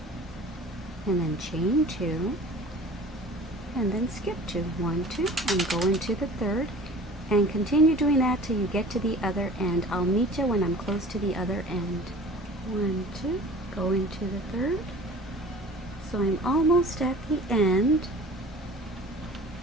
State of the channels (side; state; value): both; normal; correlation 0.43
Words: and then chain 2, and then skip 2. 1, 2, and go into the 3rd, and continue doing that till you get to the other end. I'll meet you when I'm close to the other end. 1, 2, go into the 3rd. So I'm almost at the end.